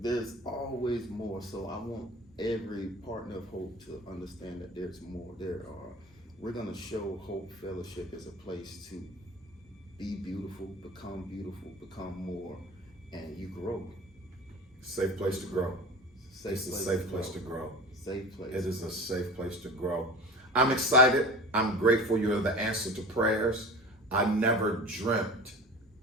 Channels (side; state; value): both; normal; correlation 0.36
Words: always more. So I want every partner of Hope to understand that there's more. We're going to show Hope Fellowship as a place to be beautiful, become more, and you grow. Safe place to grow. It's a safe place to grow. Safe place. It is a safe place to grow. I'm excited. I'm grateful you're the answer to prayers. I never dreamt